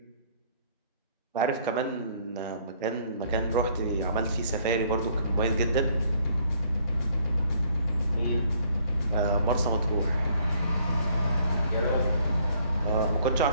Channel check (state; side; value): inverted; both; correlation -0.63